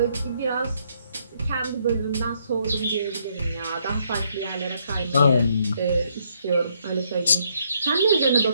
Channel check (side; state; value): both; inverted; correlation -0.72